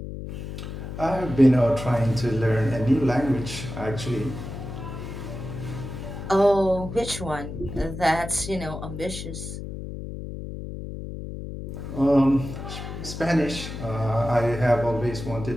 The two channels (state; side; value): noise; left; hum, 8 dB below the sound